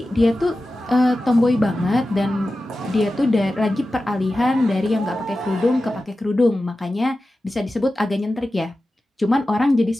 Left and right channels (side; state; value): both; normal; correlation 0.94